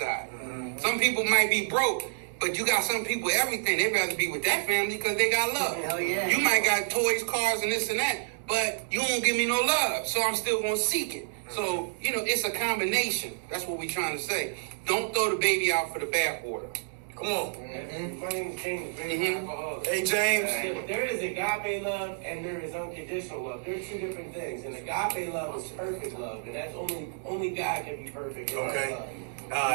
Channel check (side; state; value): left; silent; 58 dB below the other